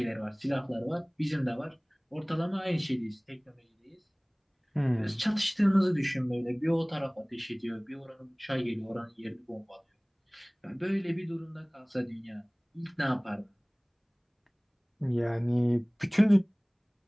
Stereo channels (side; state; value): both; identical; correlation 1.00